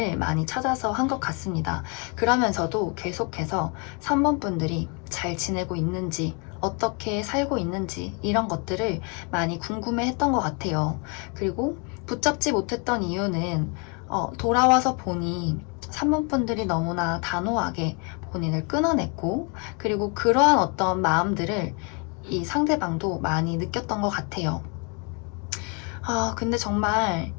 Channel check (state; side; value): quieter; right; 34.4 dB